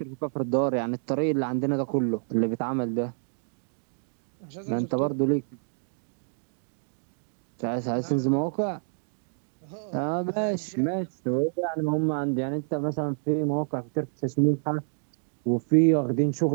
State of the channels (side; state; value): left; silent; digital silence